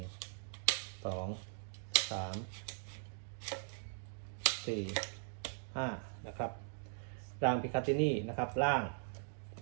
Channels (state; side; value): silent; left; digital silence